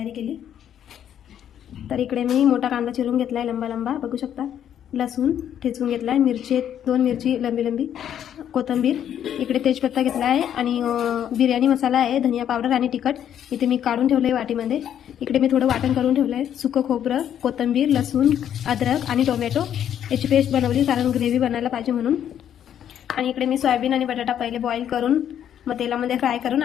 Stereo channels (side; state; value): right; quieter; 9.9 dB